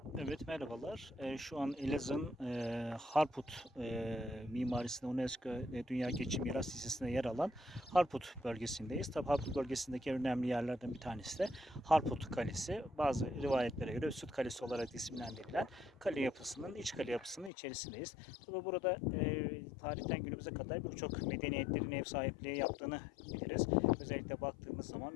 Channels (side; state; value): right; drops out; at 17.5 s